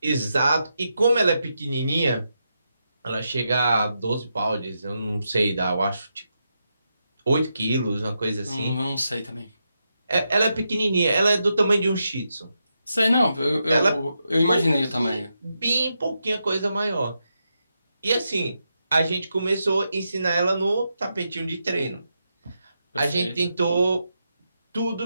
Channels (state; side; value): inverted; both; correlation -0.85